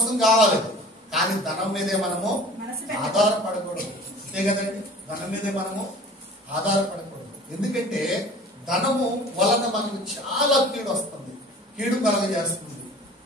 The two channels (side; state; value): both; normal; correlation 0.43